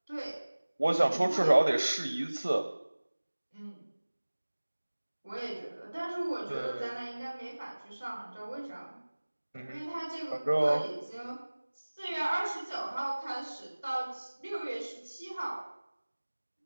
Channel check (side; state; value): both; inverted; correlation -1.00